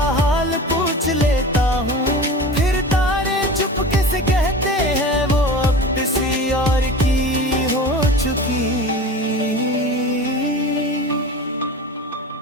हाल पूछ लेता हूँ, फिर तारे चुपके से कहते हैं वो अब किसी और की हो चुकी।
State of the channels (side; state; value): both; normal; correlation 0.34